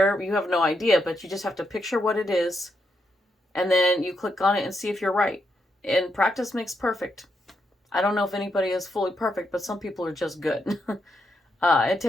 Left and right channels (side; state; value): both; normal; correlation 0.81